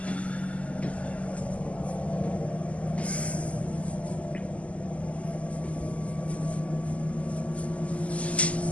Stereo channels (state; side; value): late; right; 0.065 ms